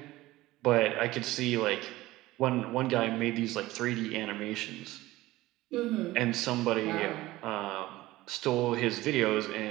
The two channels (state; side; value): quieter; left; 17.7 dB